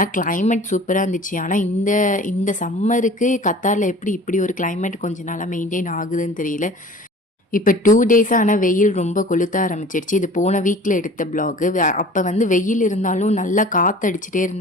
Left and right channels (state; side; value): normal; both; correlation 0.44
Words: கிளைமேட் சூப்பராக இருந்துச்சு. ஆனால் இந்த இந்த சம்மருக்கு கத்தாரில் எப்படி இப்படி ஒரு கிளைமேட் கொஞ்ச நாளாக மெயின்டைன் ஆகுதுன்னு தெரியல. இப்போ 2 டேஸாக ஆனால் வெயில் ரொம்ப கொளுத்த ஆரம்பிச்சிருச்சு. இது போன வீக்கில் எடுத்த பிளாகு. அப்போ வந்து வெயில் இருந்தாலும் நல்லா காற்றடிச்சிட்டே